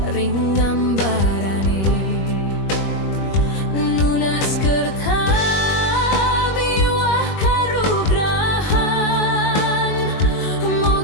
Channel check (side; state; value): right; late; 21 ms